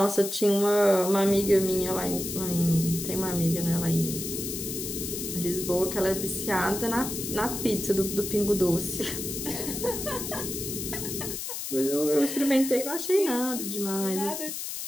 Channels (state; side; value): noise; left; hiss, 6 dB below the sound